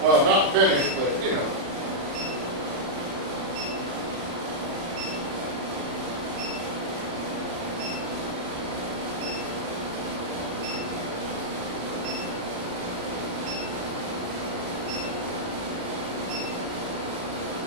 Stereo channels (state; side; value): late; left; 35 ms